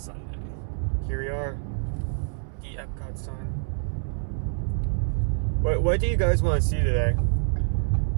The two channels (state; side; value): silent; left; 61 dB below the other